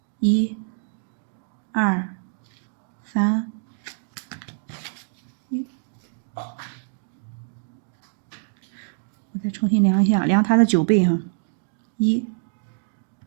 ，1、2、3。我再重新量一下，量它的9倍哈，1、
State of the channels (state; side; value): silent; left; digital silence